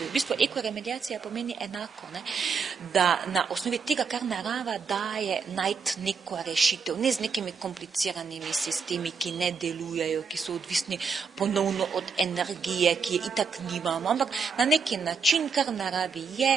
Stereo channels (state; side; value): quieter; left; 5.4 dB